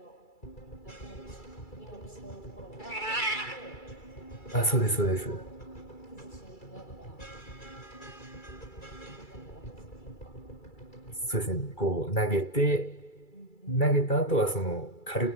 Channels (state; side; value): late; right; 2.3 ms